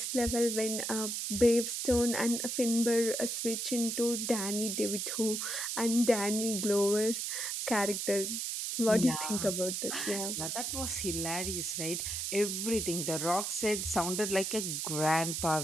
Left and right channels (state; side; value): noise; right; hiss, 2 dB below the sound